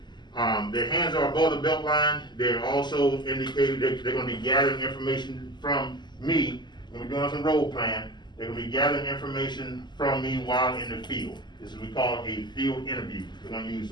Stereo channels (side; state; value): right; late; 0.21 ms